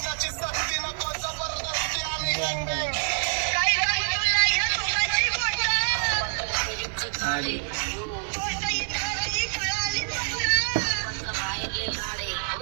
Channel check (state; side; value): silent; left; 57 dB below the other